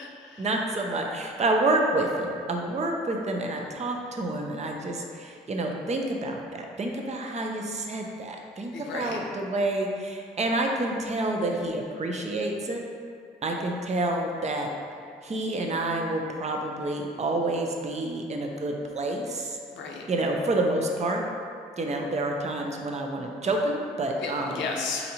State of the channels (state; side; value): normal; both; correlation 0.44